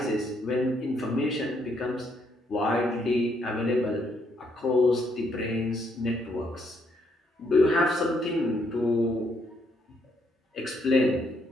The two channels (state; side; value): normal; both; correlation 0.73